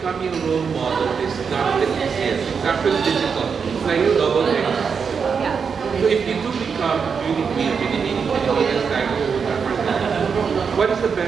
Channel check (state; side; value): quieter; left; 6.1 dB